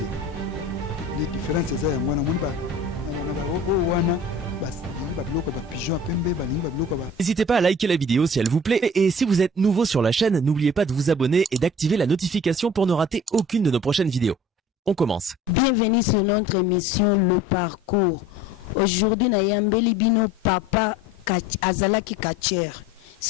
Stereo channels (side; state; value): both; normal; correlation 0.45